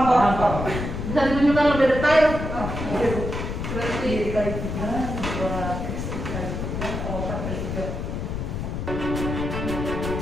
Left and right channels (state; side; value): noise; left; rumble, 4 dB below the sound